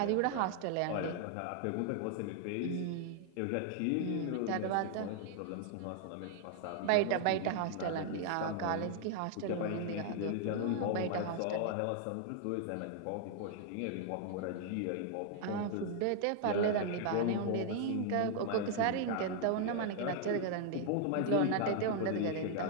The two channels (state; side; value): different; both; correlation -0.01